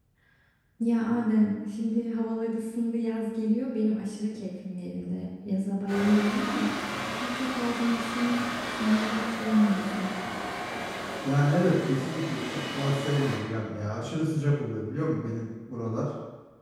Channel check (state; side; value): identical; both; correlation 1.00